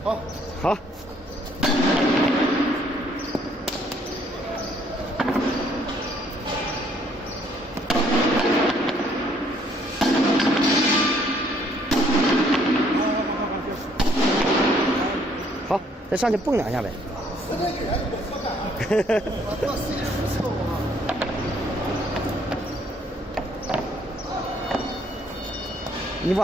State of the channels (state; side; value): normal; both; correlation 0.64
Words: 好，好。好，再上去蹦两下呗。你